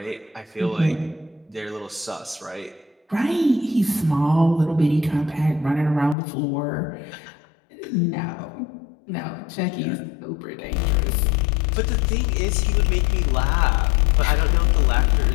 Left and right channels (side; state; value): right; drops out; at 6.2 s